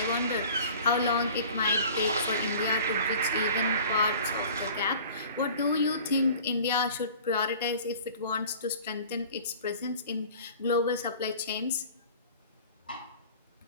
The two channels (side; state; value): both; inverted; correlation -0.45